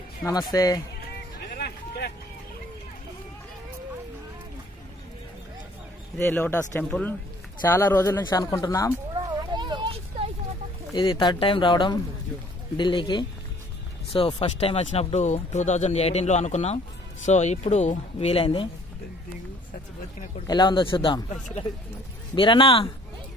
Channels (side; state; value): both; normal; correlation 0.57